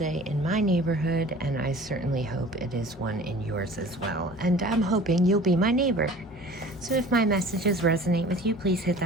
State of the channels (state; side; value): normal; both; correlation 0.44